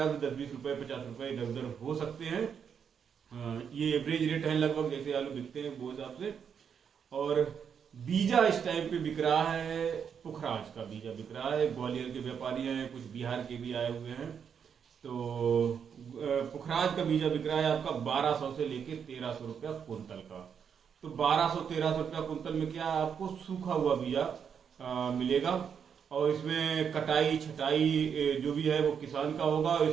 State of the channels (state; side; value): quieter; left; 7.3 dB